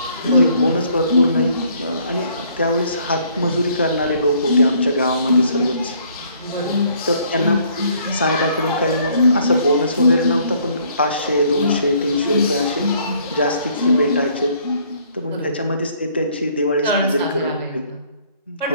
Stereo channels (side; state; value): both; inverted; correlation -0.63